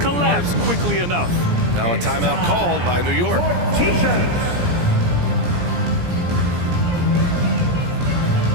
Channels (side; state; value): left; late; 17 ms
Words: quickly enough. Now a timeout called by New York.